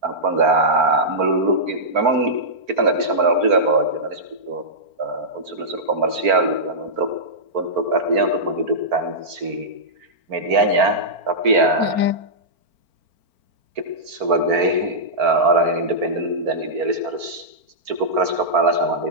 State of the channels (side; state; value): left; late; 4.4 ms